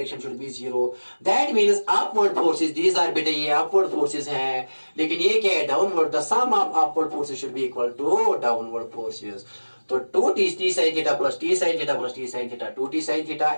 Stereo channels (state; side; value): inverted; both; correlation -1.00